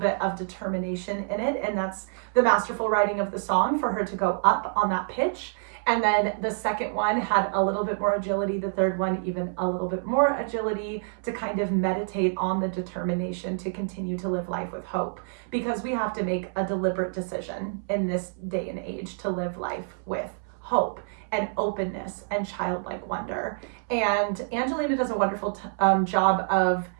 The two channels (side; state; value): left; silent; 60 dB below the other